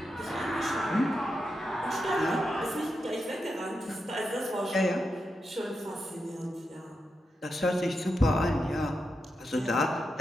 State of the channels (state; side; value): normal; both; correlation 0.87